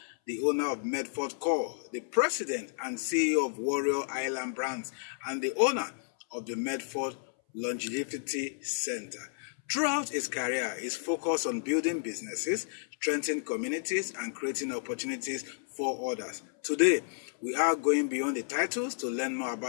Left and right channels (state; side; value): silent; right; 57 dB below the other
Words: the owner of Medford Core, the president and CEO of Warrior Island Brands, and the owner of the Medford Longevity Center. Throughout his career, his focus on building businesses, strengthening communities, and creating opportunities for others. Today, we are going beyond the titles to learn more